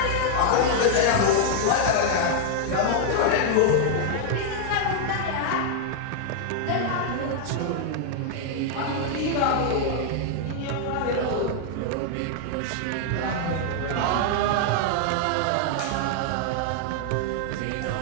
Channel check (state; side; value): different; both; correlation 0.00